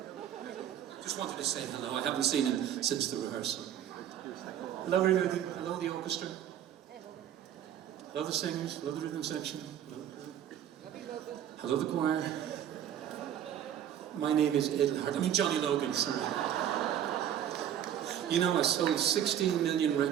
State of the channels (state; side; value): quieter; left; 10.3 dB